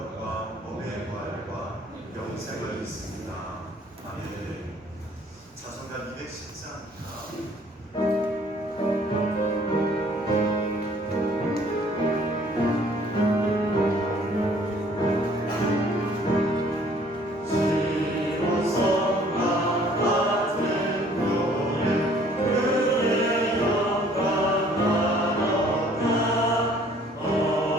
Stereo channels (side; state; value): both; normal; correlation 0.57